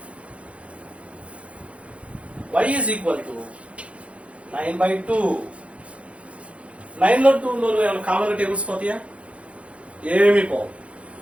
y is equal to 9 by 2. 9 లో 2 లో ఏమైనా కామన్ టేబుల్స్ పోతాయా? ఏమీ పోవు.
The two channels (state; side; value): late; left; 0.062 ms